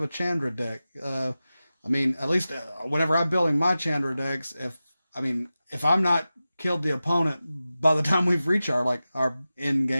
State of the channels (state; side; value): inverted; both; correlation -0.94